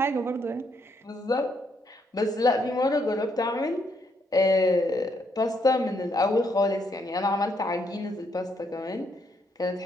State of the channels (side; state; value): both; normal; correlation 0.74